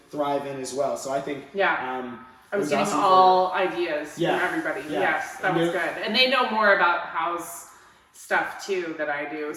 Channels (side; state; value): both; identical; correlation 1.00